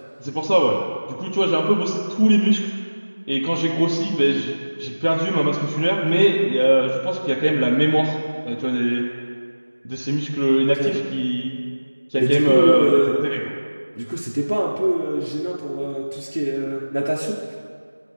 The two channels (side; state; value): both; inverted; correlation -1.00